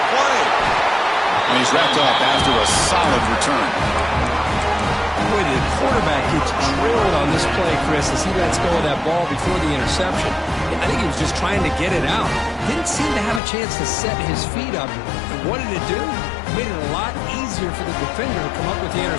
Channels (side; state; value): right; drops out; at 13.4 s